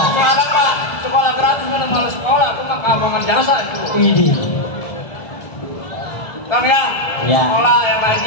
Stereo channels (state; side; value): late; right; 1.4 ms